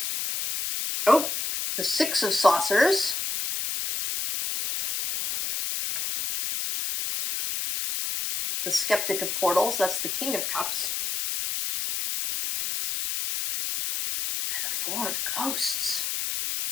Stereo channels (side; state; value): left; noise; hiss, 2 dB below the sound